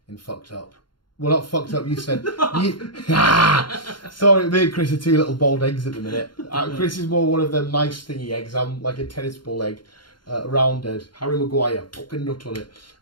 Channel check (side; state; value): right; late; 0.72 ms